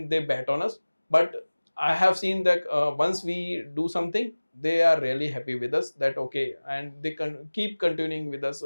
they bet on us. But I have seen that once we do something, they are really happy with us, that okay, and they can keep continuing with us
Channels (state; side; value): inverted; both; correlation -1.00